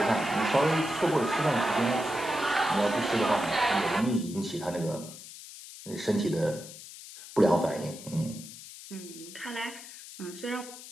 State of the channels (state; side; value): noise; left; hiss, 15 dB below the sound